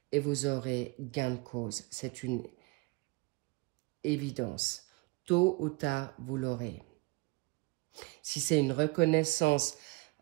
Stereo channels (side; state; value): left; quieter; 25.5 dB